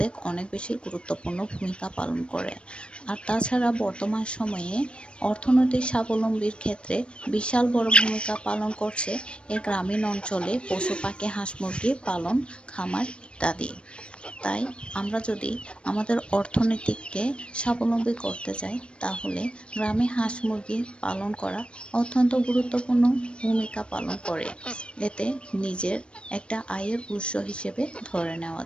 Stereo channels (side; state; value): right; late; 0.057 ms